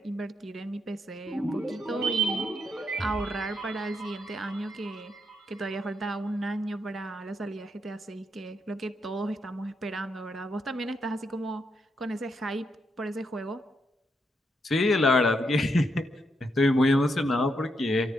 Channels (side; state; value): both; normal; correlation 0.79